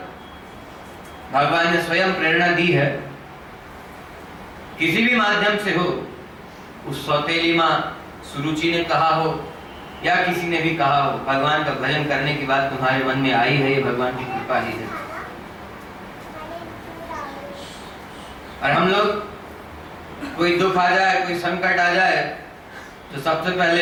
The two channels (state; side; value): identical; both; correlation 1.00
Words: भगवान ने स्वयं प्रेरणा दी है। किसी भी माध्यम से हो, उस सौतेली मां सुरुचि ने कहा हो या किसी ने भी कहा हो, भगवान का भजन करने की बात तुम्हारे मन में आई है, ये भगवान की कृपा ही है। और हम लोग, कोई दुख आ जाए, कोई संकट आ जाए, तो सबसे